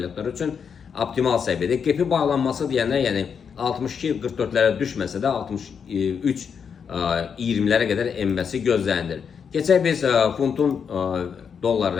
üçün optimal səviyyədə. Qepi bağlanması deyənlər, yəni 62-44-lərə düşməsə də 63-20-lərə qədər enməsi gözlənilir. Keçək biz funtun dollar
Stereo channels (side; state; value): right; quieter; 6.8 dB